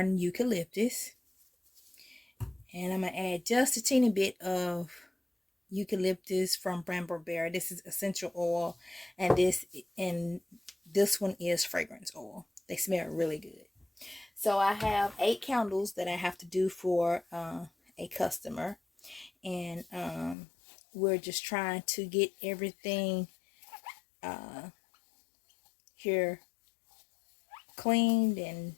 eucalyptus. And I'm going to add just a teeny bit of eucalyptus from Brambleberry. This is essential oil, and this one is fragrance oil. They smell really good. So I have 8 candles that I have to do for a customer, and we're just trying to get everything here cleaned and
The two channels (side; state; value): right; drops out; at 20.4 s